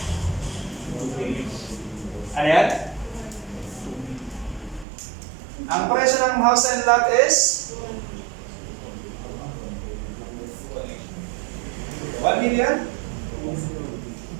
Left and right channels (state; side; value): drops out; left; at 4.9 s